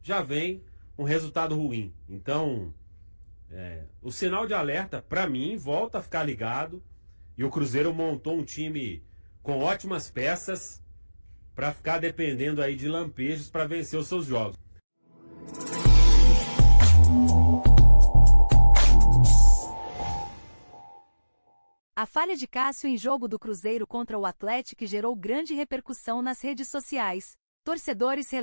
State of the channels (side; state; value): both; inverted; correlation -1.00